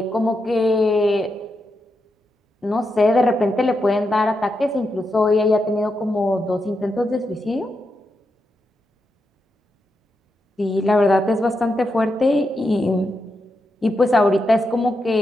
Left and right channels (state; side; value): normal; both; correlation 0.85